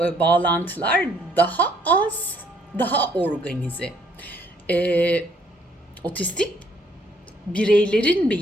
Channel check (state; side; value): normal; both; correlation 0.65